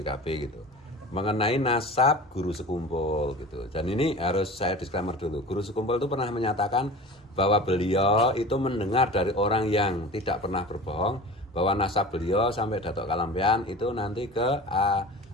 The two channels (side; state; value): both; normal; correlation 0.36